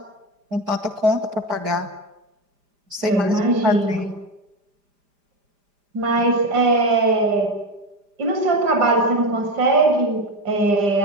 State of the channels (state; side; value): late; left; 5.0 ms